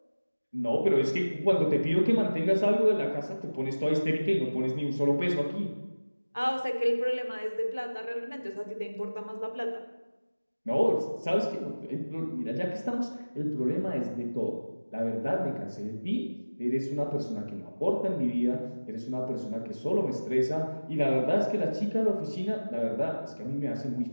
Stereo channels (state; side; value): inverted; both; correlation -1.00